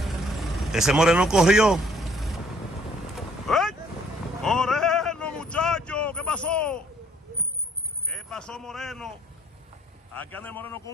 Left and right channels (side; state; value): both; normal; correlation 0.62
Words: Ese Moreno corrió. ¡Ey! Moreno, muchacho, ¿qué pasó? ¿Qué pasó, Moreno? Aquí anda el Moreno con